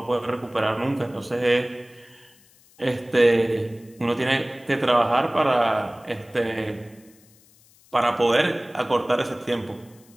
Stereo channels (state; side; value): noise; left; hiss, 29 dB below the sound